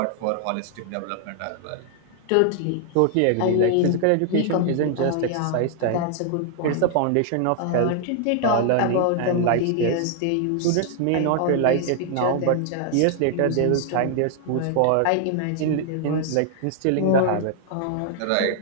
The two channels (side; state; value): both; different; correlation 0.00